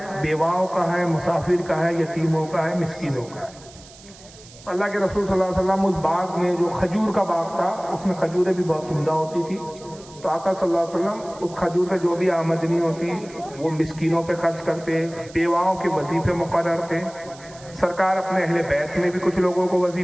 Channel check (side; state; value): right; noise; hiss, 21 dB below the sound